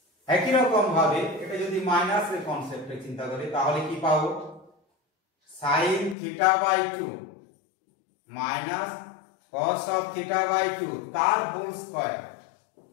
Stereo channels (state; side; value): drops out; right; at 6.2 s